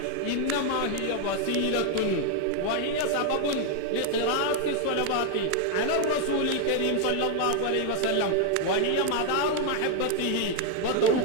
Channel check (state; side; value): different; both; correlation 0.01